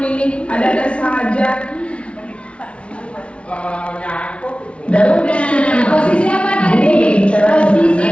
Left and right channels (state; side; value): late; right; 0.060 ms